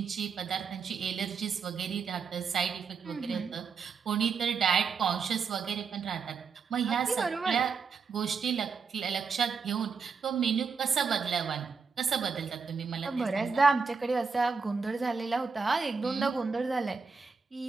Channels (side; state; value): left; quieter; 5.4 dB